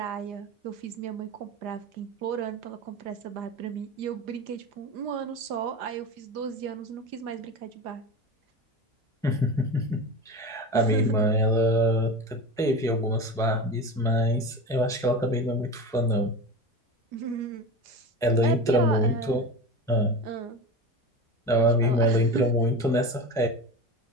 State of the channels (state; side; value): normal; both; correlation 0.27